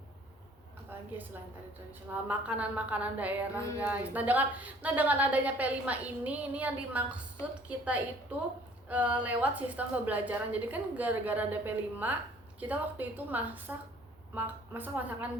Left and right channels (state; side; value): normal; both; correlation 0.55